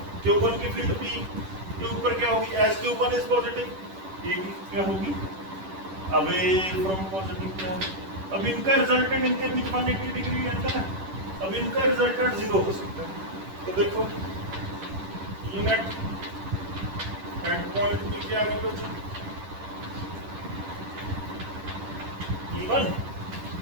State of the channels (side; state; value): left; late; 10 ms